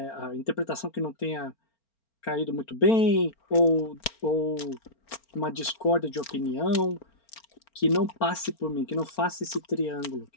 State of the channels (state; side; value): late; right; 4.4 ms